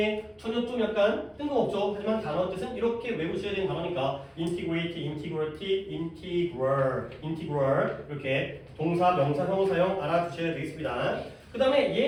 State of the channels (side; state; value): both; identical; correlation 1.00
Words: 전혀 좀 약간 뜬금없죠. 하지만 단어 뜻은 이렇게 외우셔야 되는 단어니까 integrate, integrity, integral 이렇게 동사, 명사, 형용사형 알아두셔야 되겠습니다. 그 다음에